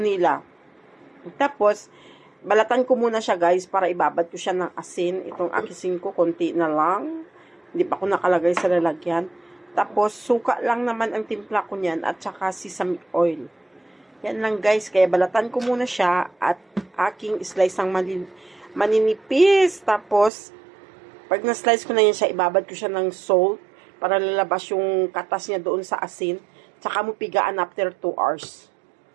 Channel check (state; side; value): drops out; left; at 20.3 s